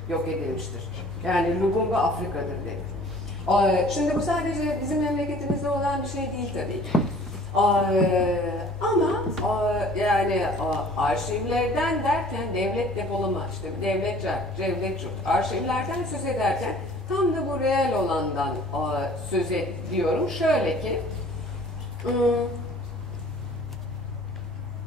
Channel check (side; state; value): both; normal; correlation 0.51